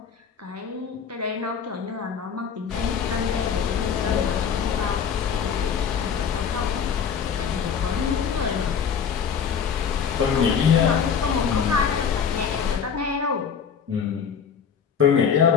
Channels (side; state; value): right; quieter; 7.0 dB